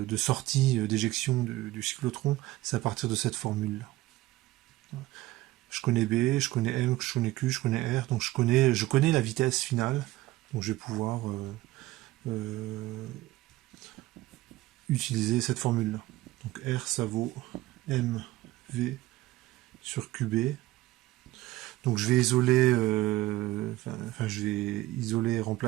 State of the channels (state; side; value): quieter; left; 17.2 dB